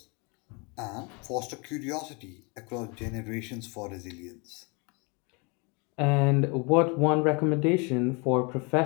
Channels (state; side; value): quieter; right; 31.0 dB